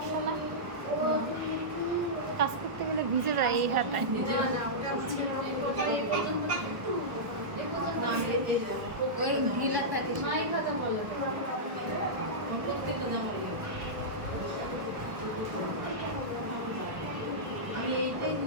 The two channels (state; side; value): late; left; 1.3 ms